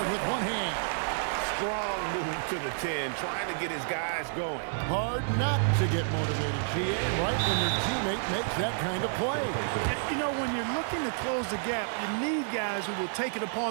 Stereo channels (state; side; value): silent; left; 58 dB below the other